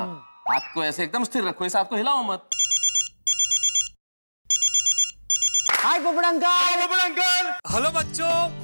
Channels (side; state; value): both; inverted; correlation -1.00